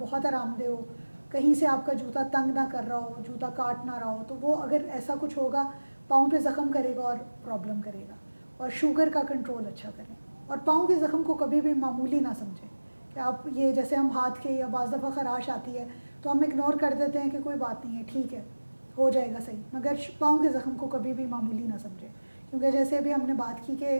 آرام دہ ہو، کہیں سے آپ کا جوتا تنگ نہ کر رہا ہو، جوتا کاٹ نہ رہا ہو. تو وہ اگر ایسا کچھ ہوگا پاؤں پہ زخم کرے گا اور پرابلم کرے گا. اور شوگر کا کنٹرول اچھا کریں، اور پاؤں کے زخم کو کبھی بھی معمولی نہ سمجھیں کہ آپ یہ جیسے ہم ہاتھ کے، یا بعض دفعہ خراش آتی ہے تو ہم اگنور کر دیتے ہیں کہ کوئی بات نہیں ہے، ٹھیک ہے، ہو جائے گا صحیح. مگر پاؤں کے زخم کو کبھی بھی معمولی نہ سمجھیں، کیونکہ جیسے ابھی ہم نے بات کی کہ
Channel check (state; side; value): inverted; both; correlation -1.00